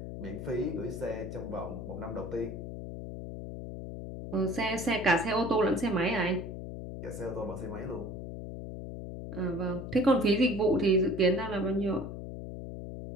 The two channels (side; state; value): left; noise; hum, 8 dB below the sound